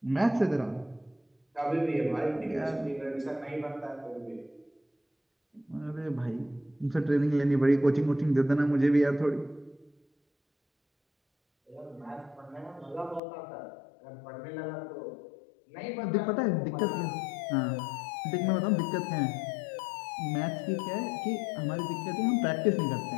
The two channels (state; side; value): drops out; right; at 13.2 s